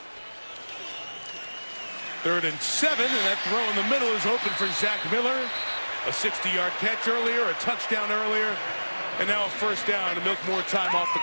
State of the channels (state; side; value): inverted; both; correlation -1.00